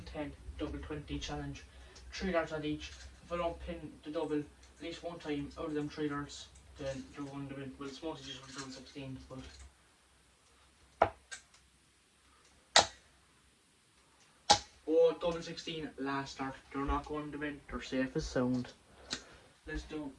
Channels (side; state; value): both; identical; correlation 1.00